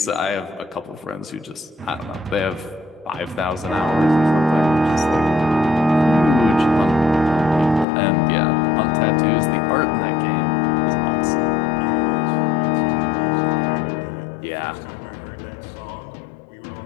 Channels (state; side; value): drops out; right; at 7.9 s